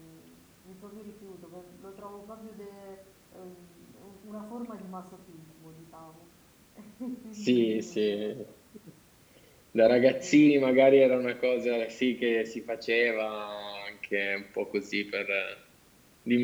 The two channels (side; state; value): both; identical; correlation 1.00